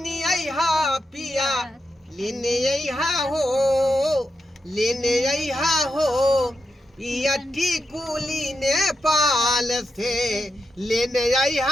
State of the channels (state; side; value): normal; both; correlation 0.86